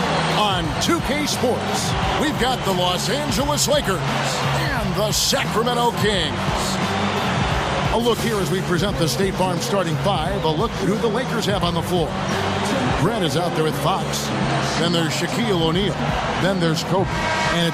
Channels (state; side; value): identical; both; correlation 1.00